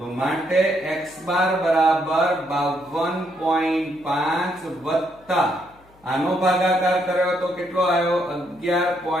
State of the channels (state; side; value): noise; left; hum, 29 dB below the sound